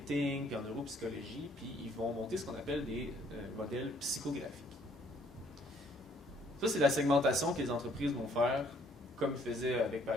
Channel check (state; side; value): normal; both; correlation 0.63